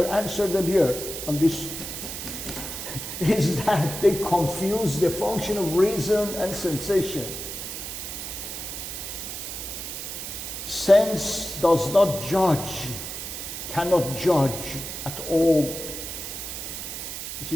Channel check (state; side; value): noise; right; hiss, 7 dB below the sound